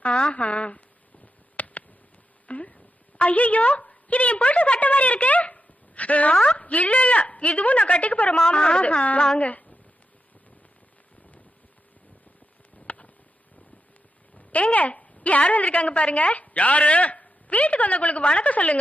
ஆஹா. ஐயோ, இது என் புருஷ சட்டை மாதிரி இருக்கு. இல்ல இல்ல, இதுவும் நான் கட்டிக்க போற மாமனோடது. வாங்க. ஏங்க, யார் வந்திருக்காங்க பாருங்க. யாரு? வீட்டுக்கு வந்தவங்களுக்கு வணக்கம்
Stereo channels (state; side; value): normal; both; correlation 0.87